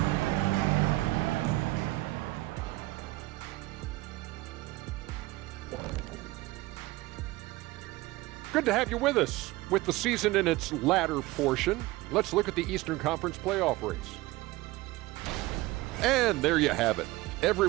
Good to have you with us. With the season in its latter portion, let's look at the Eastern Conference playoff race. And there you have it.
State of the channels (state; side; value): quieter; left; 19.1 dB